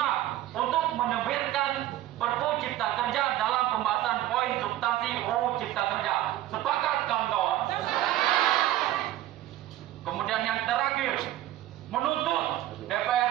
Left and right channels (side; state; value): left; quieter; 14.2 dB